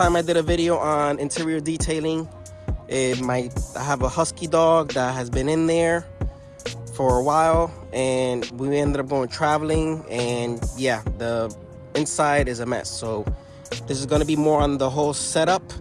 I did a video on interior detailing, I have a husky dog that has been in there for a while, and we ended up going traveling, and yeah, the inside is a mess. So this is going to be more on the whole setup,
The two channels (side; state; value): both; identical; correlation 1.00